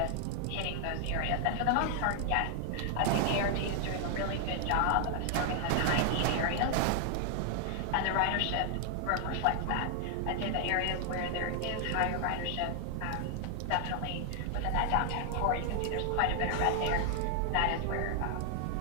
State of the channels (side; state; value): both; different; correlation 0.00